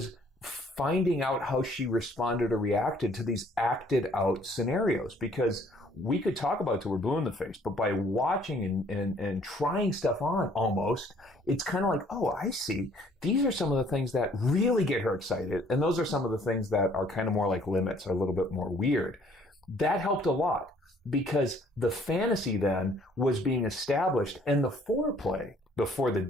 finding out how she responded or reacted to these acted out scenarios, because we could talk about it till we're blue in the face, but by watching and trying stuff on almost, it's kind of like, oh, I see. These are some of the things that really get her excited. And those are some of the things that are kind of more like limits, are a little bit more weird. That helped a lot because the fantasy then was being established, and the foreplay before the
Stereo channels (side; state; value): both; normal; correlation 0.60